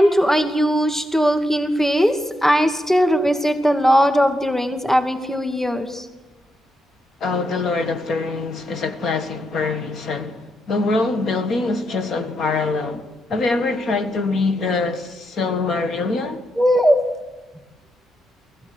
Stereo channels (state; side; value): normal; both; correlation 0.82